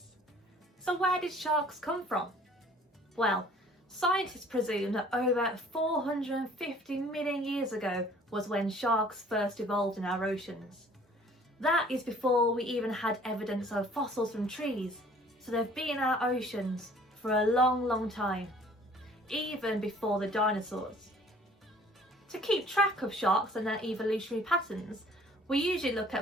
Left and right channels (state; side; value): normal; both; correlation 0.54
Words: So where did sharks come from? Well, scientists presume that over 450 million years ago was when sharks first evolved in our oceans. That is before we even had evidence of fossils from trees, so they've been in our oceans for a long time, even before the dinosaurs. To keep track of sharks and their evolutionary patterns, we usually look